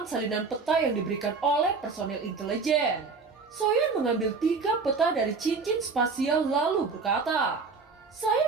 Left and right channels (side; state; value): left; quieter; 4.5 dB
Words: salinan peta yang diberikan oleh personel intelijen. Xiaoyan mengambil 3 peta dari cincin spasial lalu berkata,